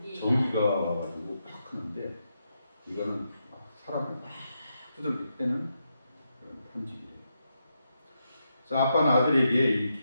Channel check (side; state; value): both; inverted; correlation -0.84